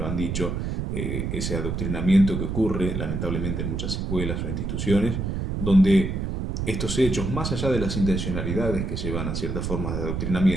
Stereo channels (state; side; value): noise; right; rumble, 2 dB below the sound